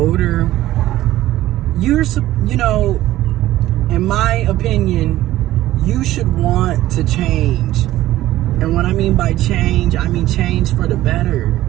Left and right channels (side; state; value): left; quieter; 15.0 dB